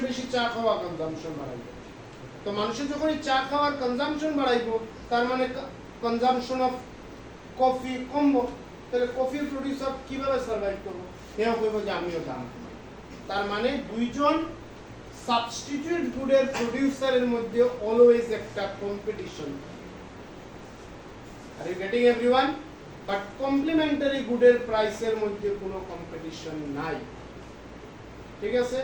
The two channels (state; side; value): identical; both; correlation 1.00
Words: বেশি চা খাওয়া কনজাম্পশন বাড়াইব। তো মানুষের যখন চা খাওয়ার কনজাম্পশন বাড়াইব তার মানে কনজাম্পশন অফ কফি কমবো, তাহলে কফির প্রডিউসার কিভাবে সার্ভাইভ করবো? এও কইব যে আমিও দাম কমাই। তার মানে দুইজন সাবস্টিটিউট গুডের প্রোডিউসারের মধ্যে অলওয়েজ একটা competition. Are you getting everyone? But complementary গুডের প্রাইসের মধ্যে কোনো কম্পিটিশন নাই। ঠিক আছে?